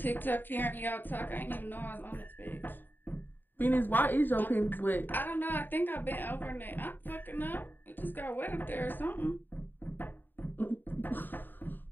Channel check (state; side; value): late; right; 0.092 ms